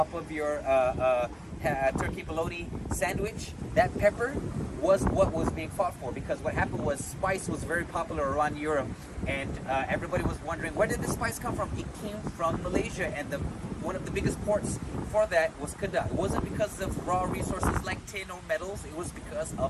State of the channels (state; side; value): identical; both; correlation 1.00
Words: of your turkey bologna sandwich. That pepper was what was being fought for, because what happened was spice was very popular around Europe, and everybody was wondering, where did the spice come from? It came from Malaysia, and one of the biggest ports for that was Kedah. It wasn't because of raw resources like tin or metals, it was because